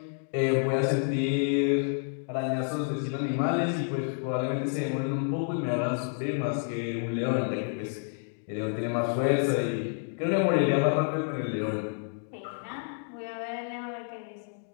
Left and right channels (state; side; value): silent; right; 58 dB below the other